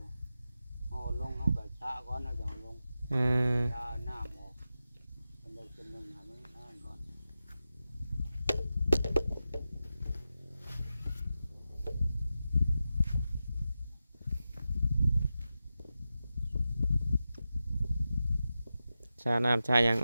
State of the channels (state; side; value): inverted; both; correlation -0.91